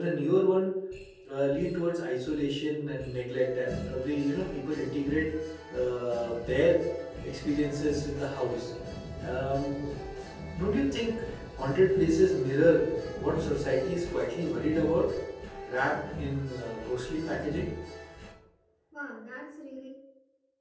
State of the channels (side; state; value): both; identical; correlation 1.00